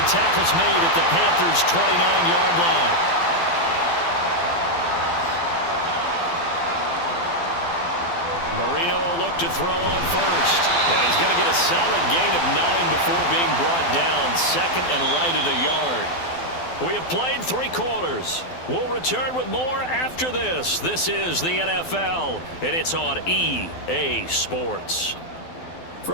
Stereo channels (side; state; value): right; late; 12 ms